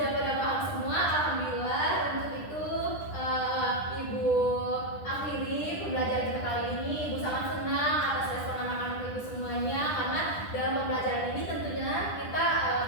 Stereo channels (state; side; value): late; right; 9.9 ms